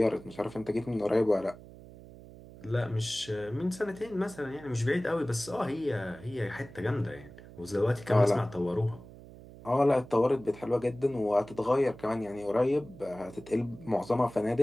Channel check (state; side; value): noise; right; hum, 18 dB below the sound